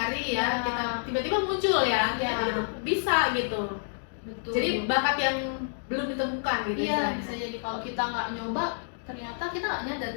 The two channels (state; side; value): silent; right; digital silence